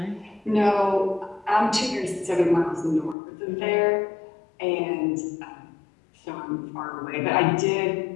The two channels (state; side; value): drops out; right; at 3.2 s